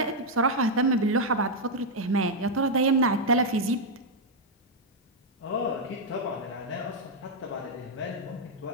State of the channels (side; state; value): both; normal; correlation -0.01